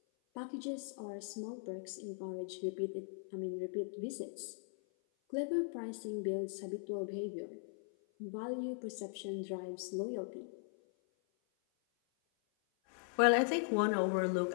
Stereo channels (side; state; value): right; silent; 52 dB below the other